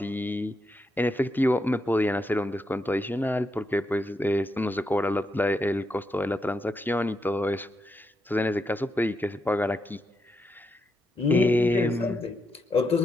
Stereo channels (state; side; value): normal; both; correlation 0.82